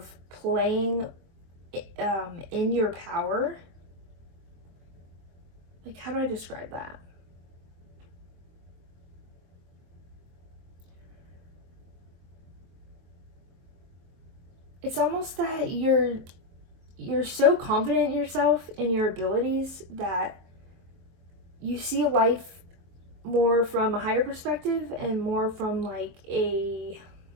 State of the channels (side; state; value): left; late; 23 ms